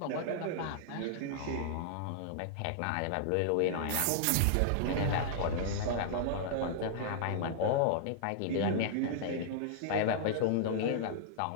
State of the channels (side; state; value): both; different; correlation -0.01